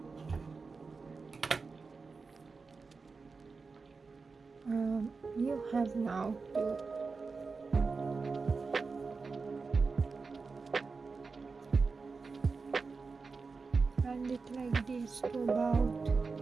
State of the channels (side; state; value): left; quieter; 4.5 dB